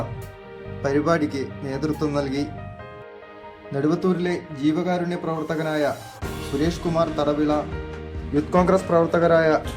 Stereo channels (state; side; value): identical; both; correlation 1.00